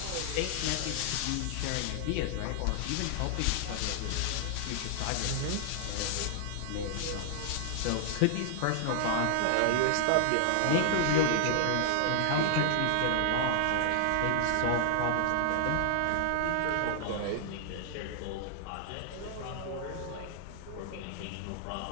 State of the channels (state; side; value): different; both; correlation 0.00